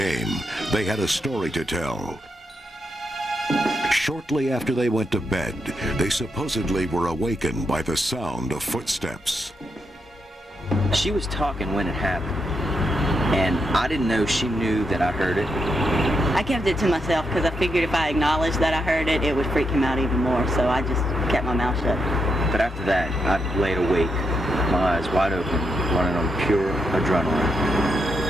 they had a story to tell. Shortly after they went to bed, they supposedly were awakened by the sound of footsteps. She was talking when it happened, and I didn't know she knew that I heard it. I kept it to myself because I figured if I acknowledged that I heard it, it would freak him out even more, so I just kept my mouth shut. But after that, I laid awake, my eyes wide open, running on pure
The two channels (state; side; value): normal; both; correlation 0.82